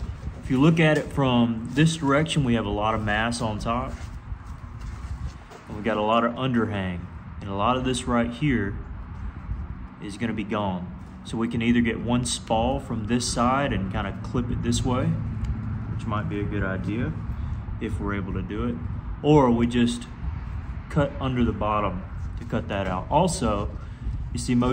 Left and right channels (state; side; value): identical; both; correlation 1.00